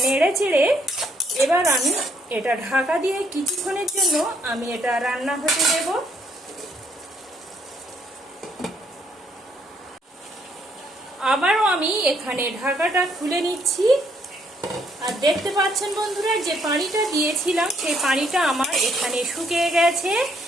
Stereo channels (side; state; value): both; normal; correlation 0.70